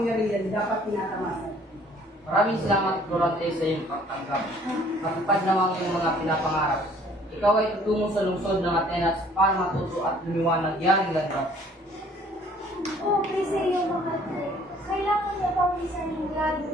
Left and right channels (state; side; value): normal; both; correlation 0.57